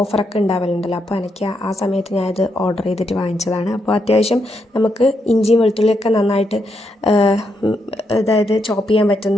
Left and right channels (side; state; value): both; normal; correlation 0.80